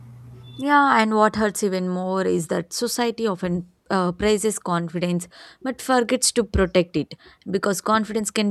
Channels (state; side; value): identical; both; correlation 1.00